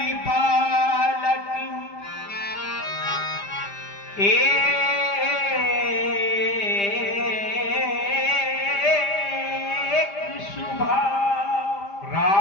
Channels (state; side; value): late; right; 5.0 ms